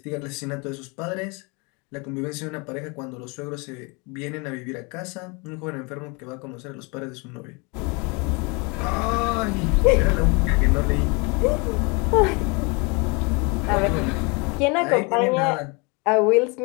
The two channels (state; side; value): quieter; right; 30.2 dB